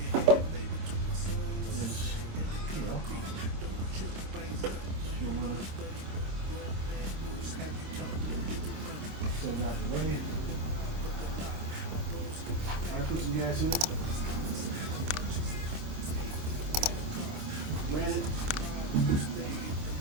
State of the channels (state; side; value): late; left; 26 ms